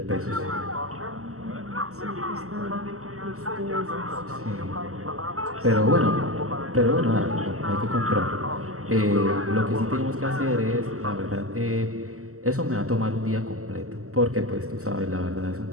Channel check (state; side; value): late; left; 0.64 ms